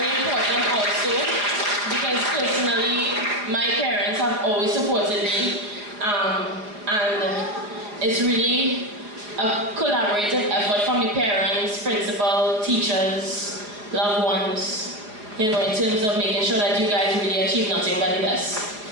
important also, because personally, my parents have always supported me, and it's really a collaborative effort from the parents, principal, teachers, loved ones, you know, in terms of making sure that you guys really achieve nothing but the best.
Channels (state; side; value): late; left; 4.8 ms